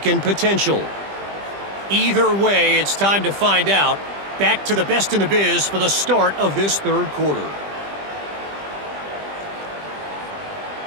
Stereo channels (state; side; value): late; left; 20 ms